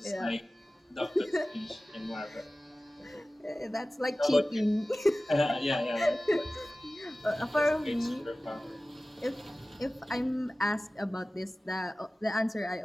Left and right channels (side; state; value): both; normal; correlation 0.97